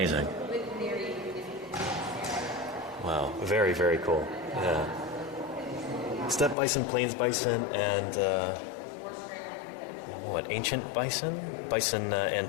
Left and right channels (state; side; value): drops out; right; at 6.6 s